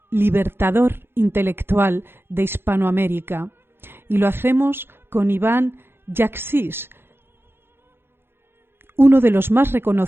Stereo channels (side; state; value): left; late; 0.11 ms